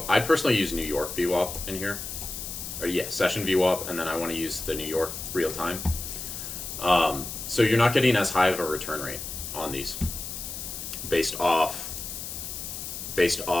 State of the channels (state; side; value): noise; left; hiss, 7 dB below the sound